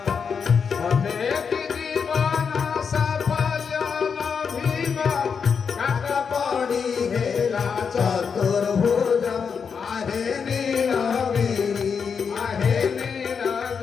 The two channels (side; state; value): right; quieter; 6.2 dB